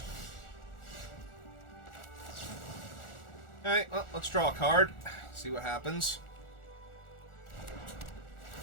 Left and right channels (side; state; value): right; late; 1.4 ms